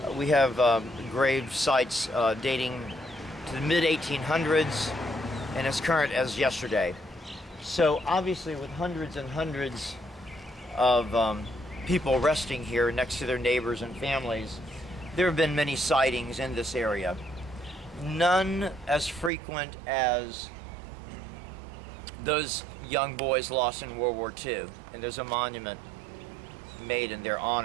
we have grave sites dating to the mid-1800s and as current as yesterday. So obviously, with hundreds and hundreds of people resting here next to their neighbors and families, there have been many sightings in this area. None as frequent as those young boys lost in World War II, and there's a monument made in their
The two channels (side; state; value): left; drops out; at 19.3 s